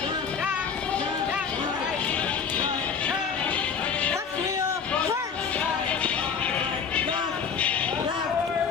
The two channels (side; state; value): right; quieter; 6.3 dB